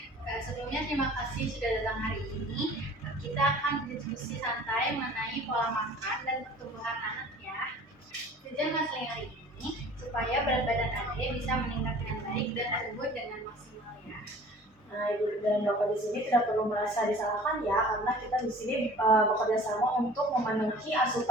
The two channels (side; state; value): both; normal; correlation 0.47